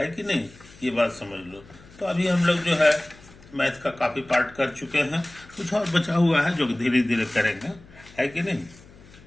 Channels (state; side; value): noise; left; hum, 23 dB below the sound